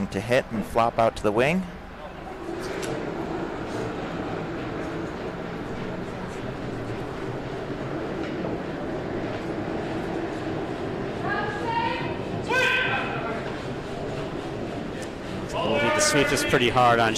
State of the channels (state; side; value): identical; both; correlation 1.00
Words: to hit and flop out to the wing. Sweep is pretty hard on